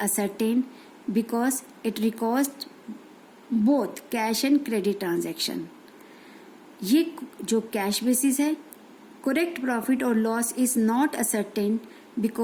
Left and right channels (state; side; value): identical; both; correlation 1.00